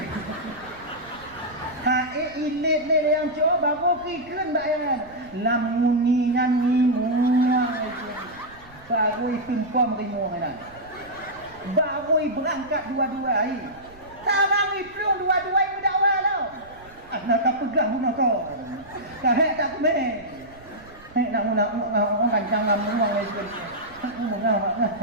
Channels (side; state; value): right; noise; rumble, 24 dB below the sound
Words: ilit le yang cowai baru kikun bayan lamuningan ngimuang itu baru tumpam ngimuang dah baru berangkat dua-dua sarang iplung dua-dua berdakwa tau nak pegang pun kau. Kahek tak kumeh. Nak kancang ngamuang itu.